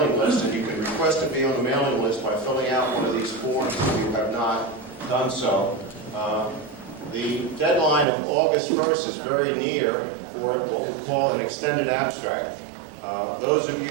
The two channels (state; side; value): drops out; left; at 8.1 s